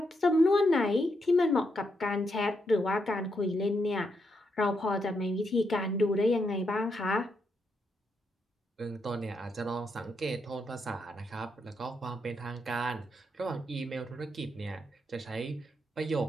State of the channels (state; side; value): normal; both; correlation 0.80